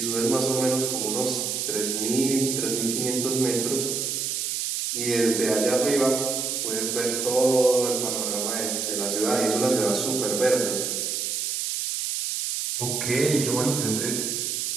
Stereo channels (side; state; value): right; noise; hiss, 1 dB below the sound